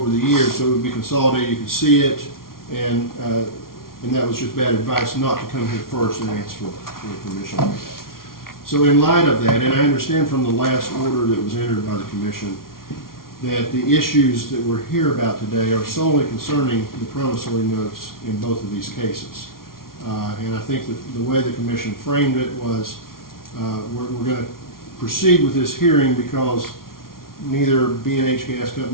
the years, so it would be consolidated, you could see it, and that was just bad advice not to come here first and ask for permission like that. So in light of that, and I understand from the last order that was entered by the commission that the issues that we're here about today are solely concerning the promissory notes in both of these cases. And I think that the way the commission framed it was we're going to proceed with this hearing because neither B&H Gas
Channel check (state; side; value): late; right; 0.93 ms